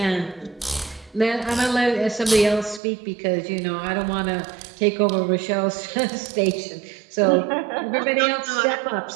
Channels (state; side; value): drops out; left; at 2.8 s